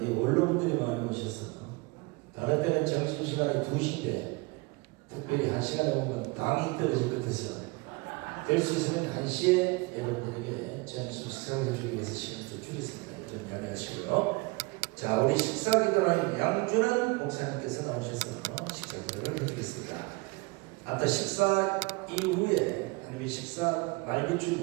이 원로분들이 많이 오셔서 다른 때는 점심시간이 2시인데 특별히 1시간에 오면 당이 떨어질 것 같아서 될 수 있으면 1시에 여러분들에게 점심 식사를 해주기 위해서 시간을 좀 줄였습니다. 좀 양해하시고요. 자, 우리 식사기도라는 양준환 목사님께서 나오셔서 식사기도를 해주겠습니다. 아까 식사 이후에 아니면 식사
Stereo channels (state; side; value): quieter; left; 26.5 dB